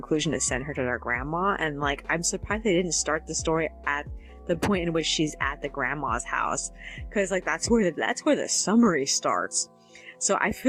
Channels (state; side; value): identical; both; correlation 1.00